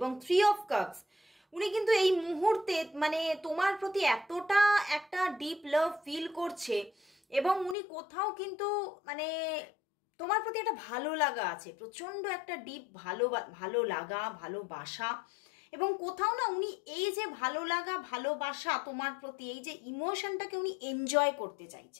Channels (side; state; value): right; drops out; at 7.8 s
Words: 3 of Cups, উনি কিন্তু এই মুহূর্তে মানে তোমার প্রতি এতটা একটা ডিপ লাভ ফিল করছে, এবং উনি কোথাও কিন্তু মানে তোমার প্রতি একটা ভালো লাগা আছে, প্রচণ্ড একটা ডিপ ভালো লাগা, ভালোবাসা। এবং কোথাও না উনি এই যে ভালো লাগা ভালোবাসা তোমার প্রতি, এই যে ইমোশনটাকে উনি এনজয় করতে